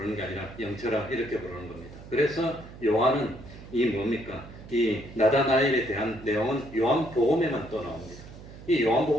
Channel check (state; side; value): noise; right; hum, 16 dB below the sound